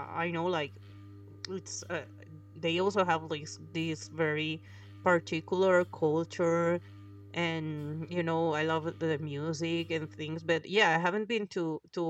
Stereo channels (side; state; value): both; identical; correlation 1.00